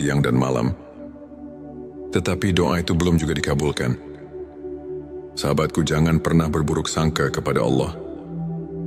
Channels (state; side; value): identical; both; correlation 1.00